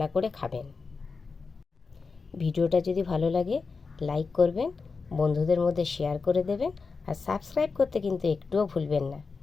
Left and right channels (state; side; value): quieter; right; 4.6 dB